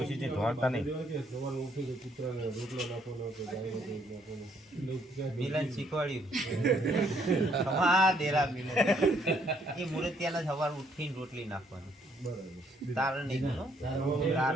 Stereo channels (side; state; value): both; normal; correlation 0.68